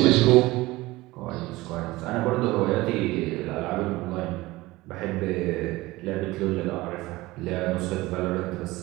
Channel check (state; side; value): quieter; left; 19.6 dB